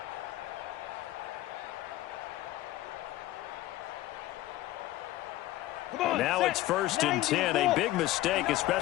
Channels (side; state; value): right; quieter; 16.0 dB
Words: Now it's 1st and 10, a big mistake,